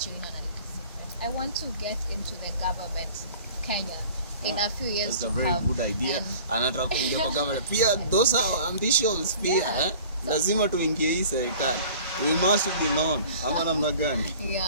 you in on a little secret. I want to get into the government, Kenya. in a few years that's to a very come. good idea. Anataka kuingia kwa government. Pia those are ambitions pia. Yeah. Lazima tuingie hii serikali. We must be known. Ama namna gani?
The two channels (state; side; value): inverted; both; correlation -0.46